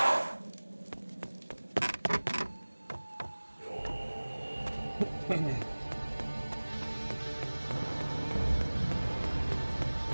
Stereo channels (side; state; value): both; inverted; correlation -1.00